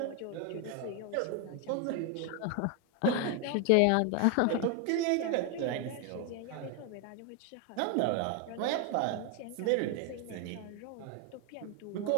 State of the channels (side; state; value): both; different; correlation 0.01